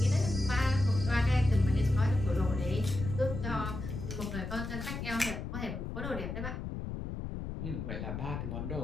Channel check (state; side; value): noise; left; rumble, 5 dB below the sound